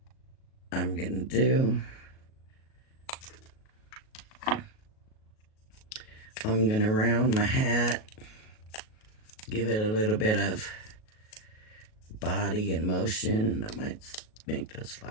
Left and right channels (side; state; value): right; late; 37 ms